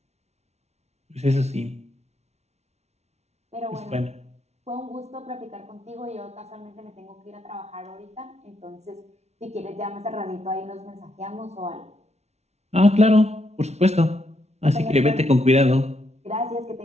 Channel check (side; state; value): left; late; 0.31 ms